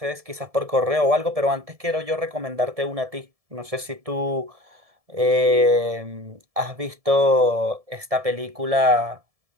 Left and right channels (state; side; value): late; left; 1.7 ms